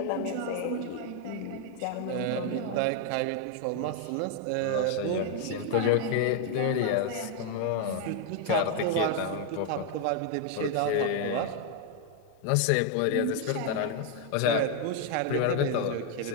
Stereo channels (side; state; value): both; different; correlation 0.01